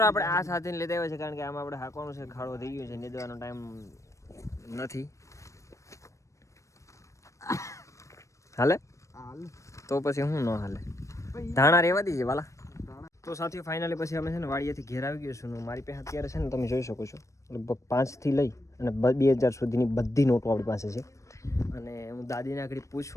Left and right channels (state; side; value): late; right; 0.15 ms